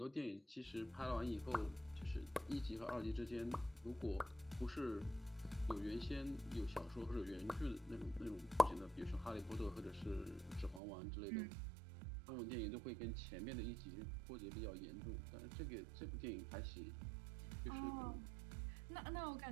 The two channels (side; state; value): left; drops out; at 10.8 s